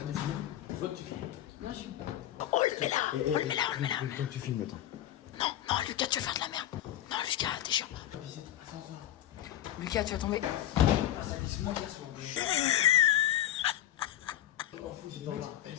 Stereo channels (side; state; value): right; quieter; 12.8 dB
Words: de filmer. Je veux que tu filmes. Oh, le mets là. Oh, le mets là, on le met là. Quand tu filmes, attends. Non, non, Lucas, tu vas faire de la merde. Non, Lucas, t'es chiant. Lucas, tu vas tomber.